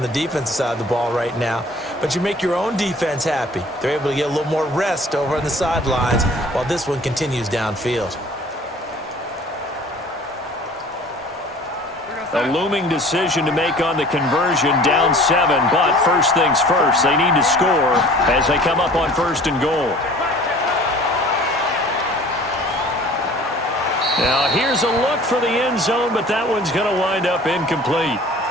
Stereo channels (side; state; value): both; normal; correlation 0.48